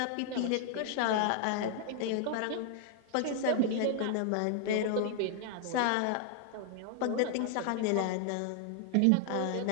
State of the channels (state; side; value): different; both; correlation 0.00